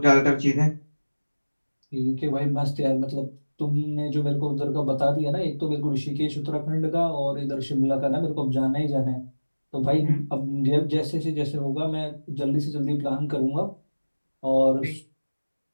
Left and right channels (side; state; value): both; inverted; correlation -1.00